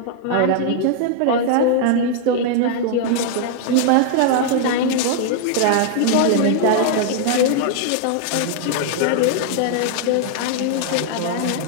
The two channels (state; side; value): different; both; correlation 0.00